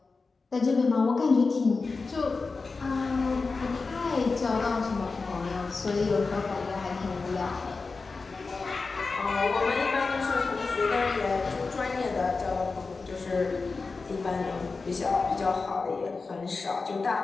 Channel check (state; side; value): quieter; right; 4.2 dB